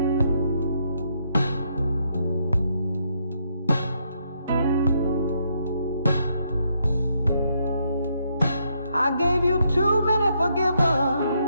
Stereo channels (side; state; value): both; inverted; correlation -0.75